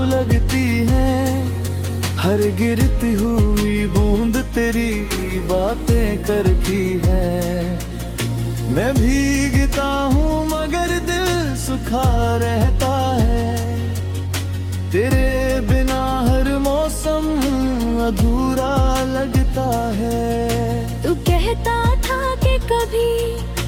लगती हैं, हर गिरती हुई बूंद तेरी बातें करती है। मैं भीगता हूँ मगर दिल सूखा रहता है, तेरे बिना हर मौसम अधूरा लगता है। तू कहता था कि कभी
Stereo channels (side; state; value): both; identical; correlation 1.00